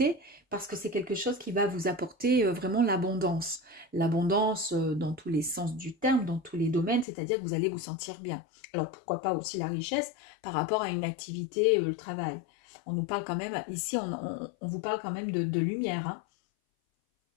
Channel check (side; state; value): right; drops out; at 7.1 s